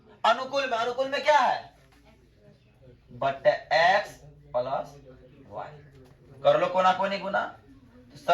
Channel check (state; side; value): identical; both; correlation 1.00